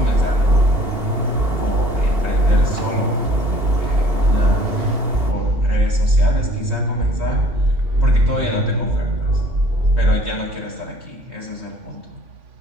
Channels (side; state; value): left; late; 2.8 ms